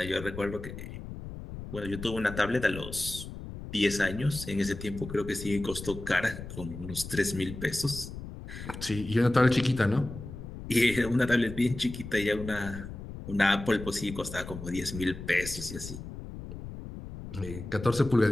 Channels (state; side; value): noise; left; rumble, 10 dB below the sound